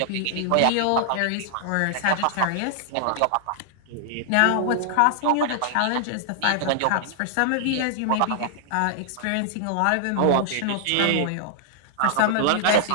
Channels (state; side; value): different; both; correlation -0.01